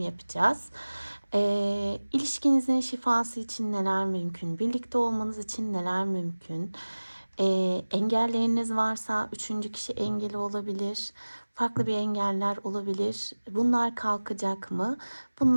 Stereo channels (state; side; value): inverted; both; correlation -1.00